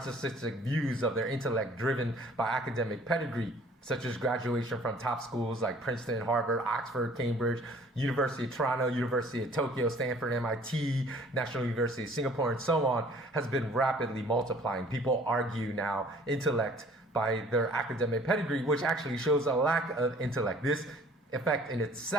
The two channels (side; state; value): both; normal; correlation 0.54